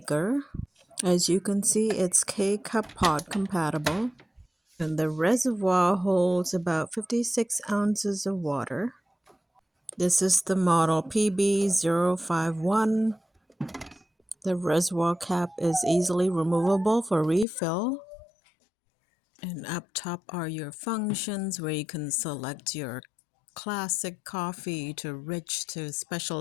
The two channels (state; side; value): drops out; right; at 17.4 s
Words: As you can see, it's K-Cup pod compatible, and the reservoir holds about 56 ounces of water. This is the model PB051. The reservoir cap is easily removable for refill. And up top are your functions where you can select your classic coffee to rich to